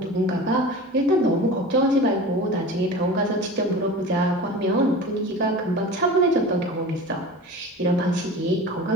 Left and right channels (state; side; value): normal; both; correlation 0.36